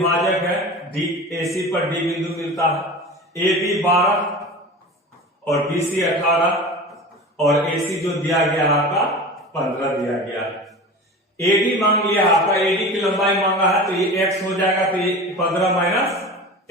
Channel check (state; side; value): normal; both; correlation 0.33